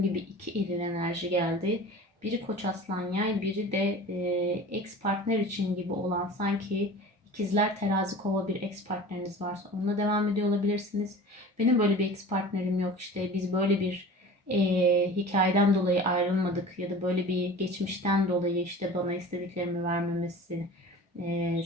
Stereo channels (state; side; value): normal; both; correlation 0.39